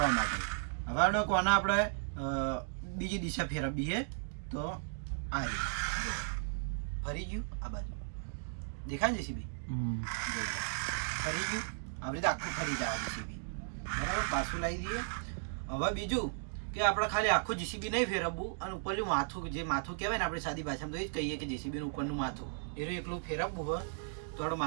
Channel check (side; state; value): left; silent; digital silence